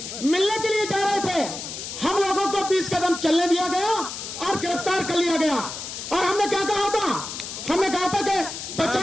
मिलने के लिए जा रहे थे, हम लोगों को 20 कदम चलने दिया गया और गिरफ्तार कर लिया गया। और हमने क्या कहा था? हमने कहा था कि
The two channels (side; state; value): left; noise; hiss, 8 dB below the sound